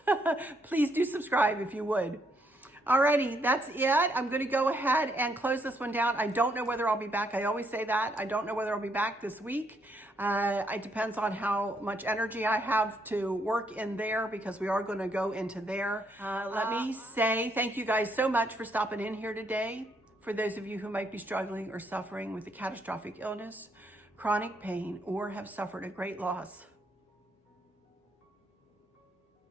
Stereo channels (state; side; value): normal; both; correlation 0.73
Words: please do subscribe if you would. Alrighty, that's it. I'm going to go ahead and close this one down. I don't know whether I'll be back. I always say that. I don't know whether I'll be back this week. It depends on how much energy I have to work in there, because we are going to go into there. Let me say thank you guys so much for stopping in here today. For those of you who might be struggling or suffering with a catastrophic illness, chronic pain, or have suffered a great loss,